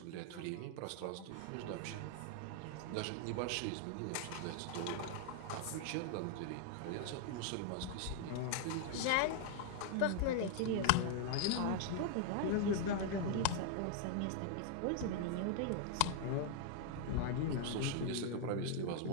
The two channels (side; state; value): both; different; correlation 0.00